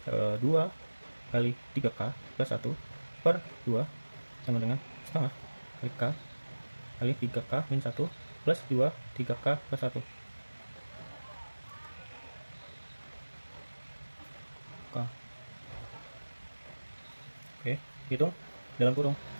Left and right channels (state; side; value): inverted; both; correlation -1.00